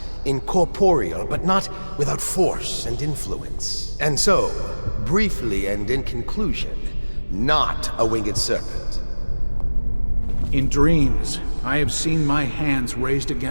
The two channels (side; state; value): both; inverted; correlation -1.00